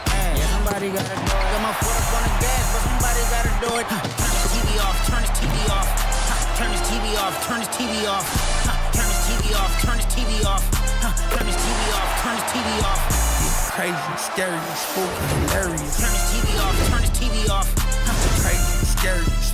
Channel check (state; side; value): identical; both; correlation 1.00